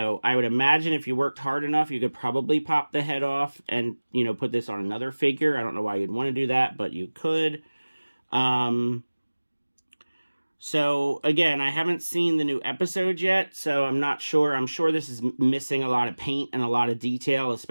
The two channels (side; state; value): both; inverted; correlation -1.00